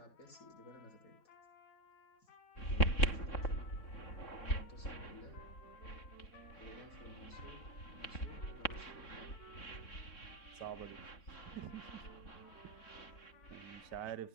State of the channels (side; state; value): right; late; 3.6 ms